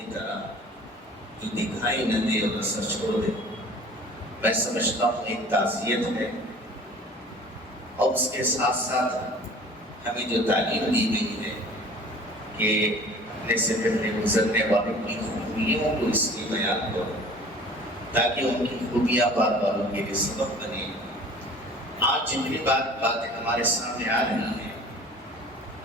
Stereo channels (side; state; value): both; normal; correlation 0.46